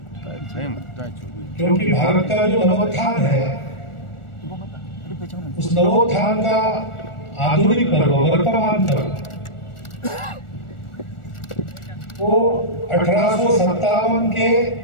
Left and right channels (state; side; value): late; right; 1.4 ms